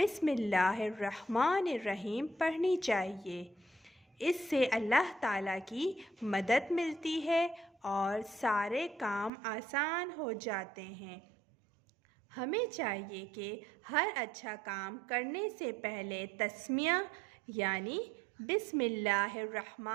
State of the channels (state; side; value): drops out; left; at 9.3 s